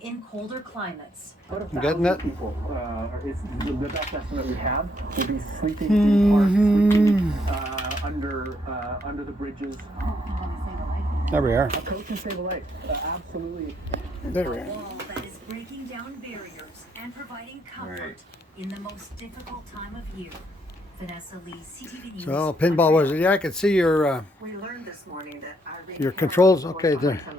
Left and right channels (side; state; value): both; normal; correlation 0.73